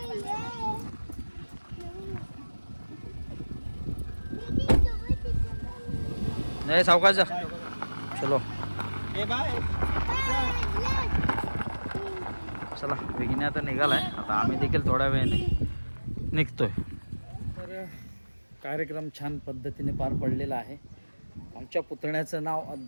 नाही सावकाश जा. चलो चला, विघ्ने आता निघालाय. आता आम्ही देखील थोड्या वेळाने निघतोय. तर कार्यक्रम छान पद्धतीने पार पडलेला आहे. आमच्या पुतण्याचं नाव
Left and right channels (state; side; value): inverted; both; correlation -1.00